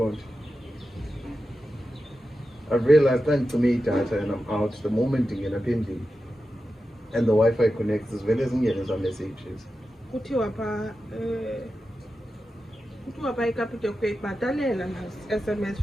I've realized that to me data and I'm out the moment you get a pending and the Wi-Fi connects as well as some messages. SMS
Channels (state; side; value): normal; both; correlation 0.91